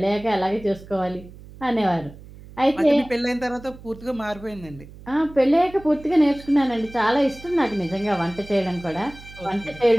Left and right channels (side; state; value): right; noise; hum, 18 dB below the sound